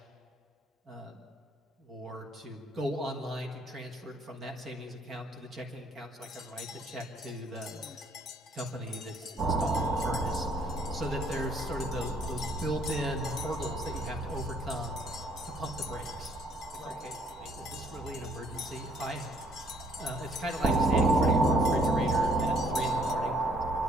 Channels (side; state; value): both; normal; correlation 0.64